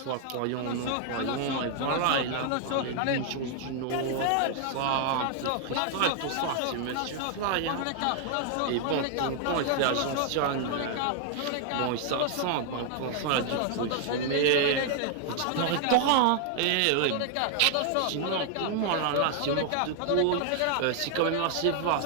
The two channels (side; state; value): both; different; correlation 0.00